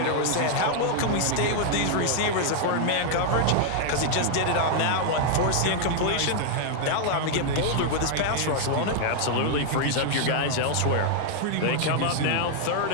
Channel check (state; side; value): different; both; correlation 0.00